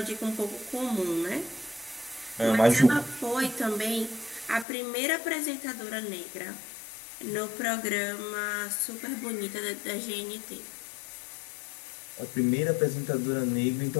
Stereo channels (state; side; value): drops out; right; at 4.7 s